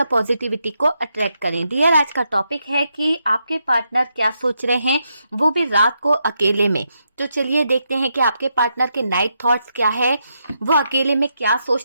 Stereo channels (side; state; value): both; inverted; correlation -0.81